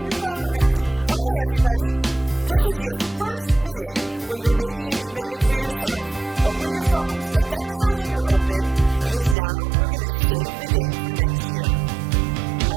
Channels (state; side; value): drops out; left; at 9.3 s